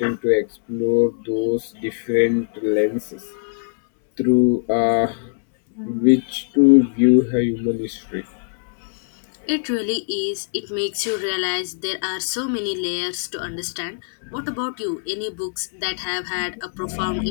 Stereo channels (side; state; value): right; silent; 64 dB below the other